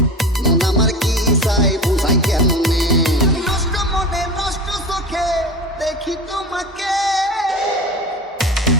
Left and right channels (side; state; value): both; normal; correlation 0.30